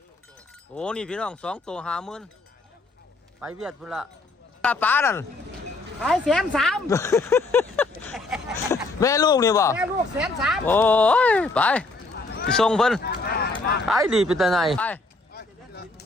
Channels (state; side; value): quieter; right; 3.2 dB